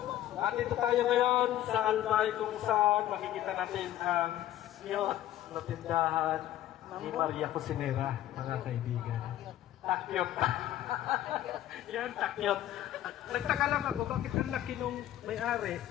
At dito tayo ngayon sa Albay kung saan makikita natin ang cute na tindahan ni Maria Cosinera, mga kaibigan. Takyot. Yan, takyot. Nagtaka lang ako, bakit ang laki nung may-ari?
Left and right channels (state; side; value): quieter; right; 13.1 dB